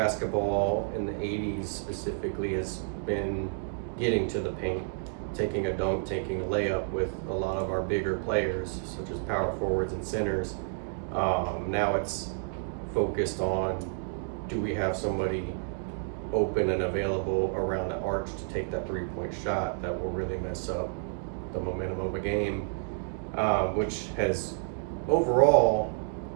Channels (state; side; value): silent; left; digital silence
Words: in the 80s specifically has been getting to the paint, taking a dunk, taking a layup with a lot of our bigger players, such as power forwards and centers. Now it's focused on, do we have somebody open and available around the arch to take that three-point shot that will really mess up the momentum of a game, which has overall